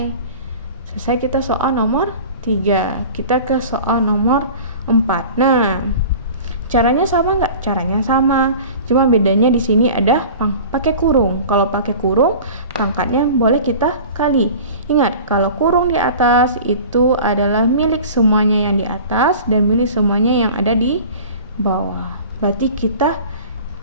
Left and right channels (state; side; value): inverted; both; correlation -0.40